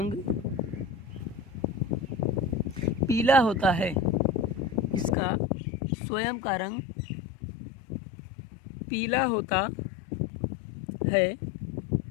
पीला होता है। इसका स्वयं का रंग पीला होता है।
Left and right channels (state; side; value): drops out; right; at 5.2 s